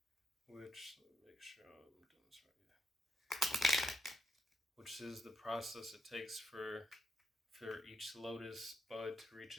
which, let me make sure I'm doing this right here, which is the process it takes for each lotus bud to reach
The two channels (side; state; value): both; normal; correlation 0.77